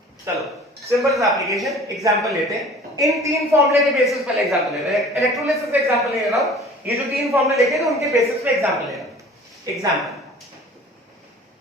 चलो सिंपल एप्लीकेशन एग्जांपल लेते हैं। इन तीन फॉर्मूले के बेसिस पर एग्जांपल ले रहे हैं। इलेक्ट्रोलिसिस पे एग्जांपल ले रहा हूं। ये जो तीन फॉर्मूले लिखे थे उनके बेसिस पे एग्जांपल ले रहा हूं। Example,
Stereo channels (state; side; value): normal; both; correlation 0.46